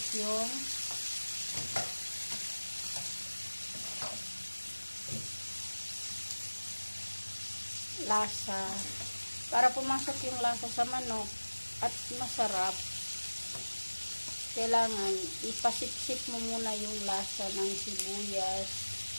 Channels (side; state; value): both; inverted; correlation -1.00